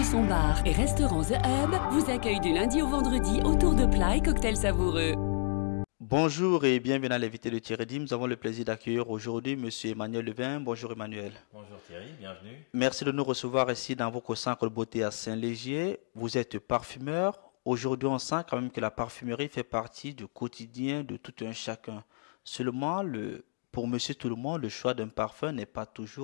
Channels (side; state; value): right; silent; digital silence